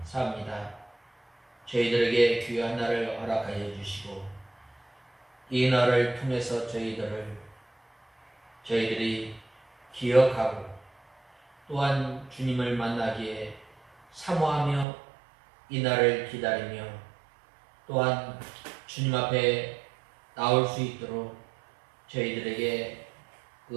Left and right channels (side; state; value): left; drops out; at 14.9 s